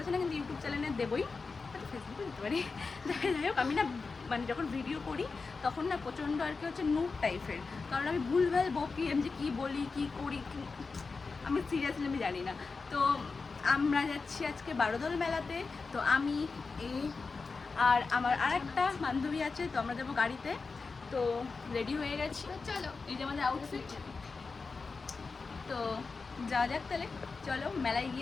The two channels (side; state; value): right; quieter; 4.4 dB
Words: না, কিন্তু ইউটিউব চ্যানেলে দেবোই, ফেসবুকে দিতে পারি। যাই হোক, আমি না মানে যখন ভিডিও করি তখন না প্রচণ্ড আর কি হচ্ছে নুট টাইপের, কারণ আমি ভুলভাল বকি, আমি যে কী বলি কী করি আমি সিরিয়াসলি আমি জানি না। তো আমরা যাচ্ছি আজকে বারোদল মেলাতে। তো আমি আর আমার আরেকটা বান্ধবী আছে, তো আমরা যাবো গাড়িতে। তো রেডি হয়ে গেছি, চলো এই যে আমাদের আউটফিট। তো যাওয়া যাক তাহলে, চলো মেলায়